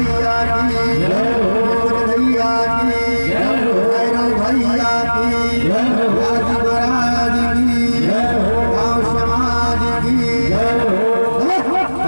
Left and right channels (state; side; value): inverted; both; correlation -1.00